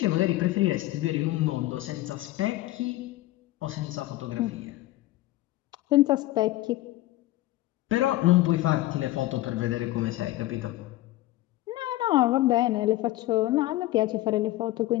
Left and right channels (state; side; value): quieter; right; 16.7 dB